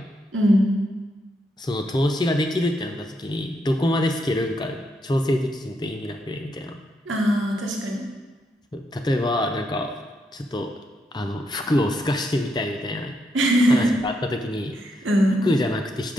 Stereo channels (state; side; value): normal; both; correlation 0.79